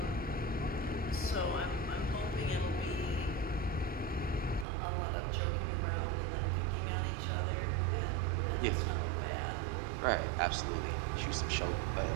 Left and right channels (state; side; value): drops out; left; at 4.7 s